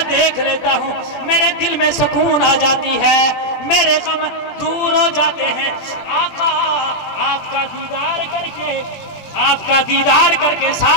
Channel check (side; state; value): right; late; 20 ms